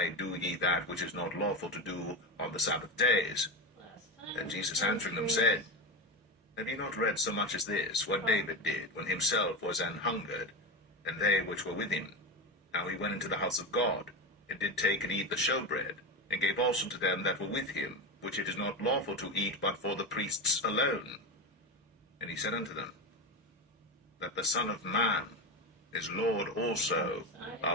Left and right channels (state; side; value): normal; both; correlation 0.18